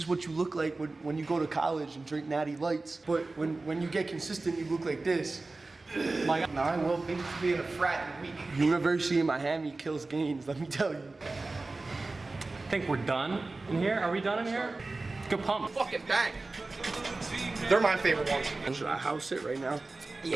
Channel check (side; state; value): left; quieter; 3.4 dB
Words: what you look like when you go to college and drink Natty Lights. But when you get consistent, you look like this. My God. No, I will be in a frat in a week. University of Miami kills gains, let me tell you. I think we're done in here. Are we done in here? Good pump. Fucking bang. They're my favorite ones. Should I house it right now?